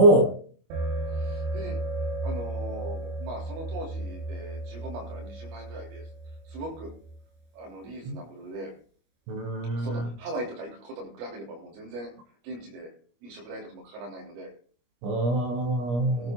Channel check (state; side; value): late; left; 25 ms